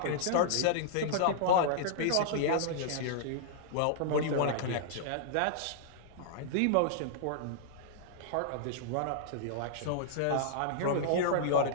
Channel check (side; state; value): both; different; correlation -0.01